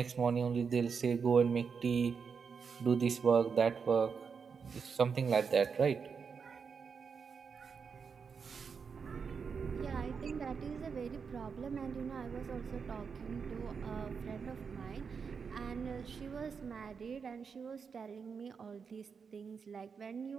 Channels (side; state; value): left; quieter; 5.9 dB